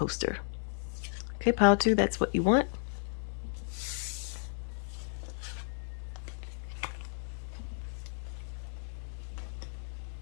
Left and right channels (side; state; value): right; silent; digital silence